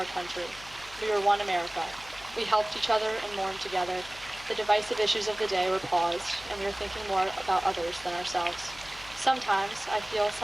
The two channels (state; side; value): noise; left; hum, 20 dB below the sound